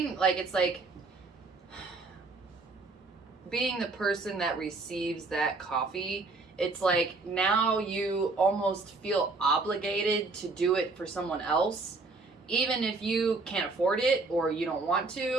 like, it's like being the person that receives that coffee, it's like now you almost feel obligated to do it for someone else, even if you can't afford it or you don't want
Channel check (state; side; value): quieter; left; 3.6 dB